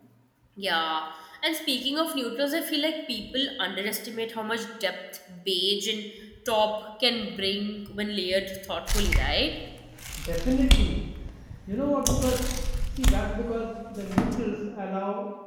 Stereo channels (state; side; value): identical; both; correlation 1.00